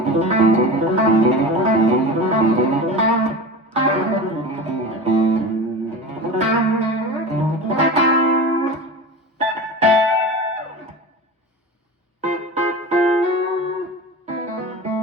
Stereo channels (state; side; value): normal; both; correlation 0.31